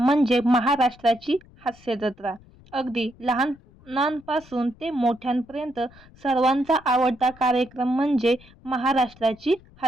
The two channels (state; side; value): noise; left; rumble, 25 dB below the sound